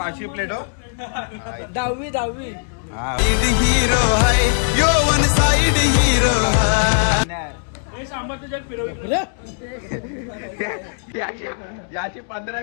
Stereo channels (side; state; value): right; silent; 66 dB below the other